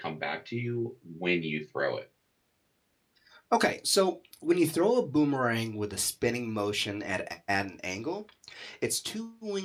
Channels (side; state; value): both; identical; correlation 1.00